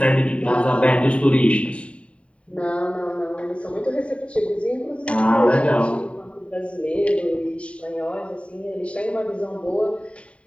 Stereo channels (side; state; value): right; late; 0.062 ms